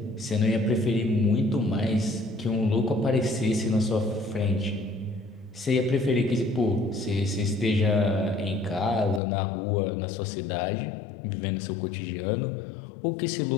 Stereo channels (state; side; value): drops out; right; at 9.2 s